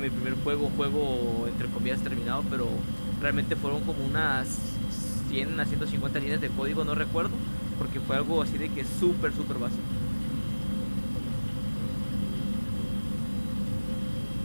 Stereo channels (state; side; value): inverted; both; correlation -1.00